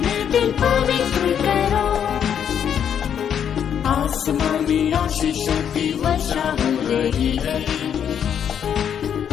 दिल पवित्र करो। आसमानी आशीषों की वर्षा हो रही है,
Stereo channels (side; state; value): right; quieter; 8.6 dB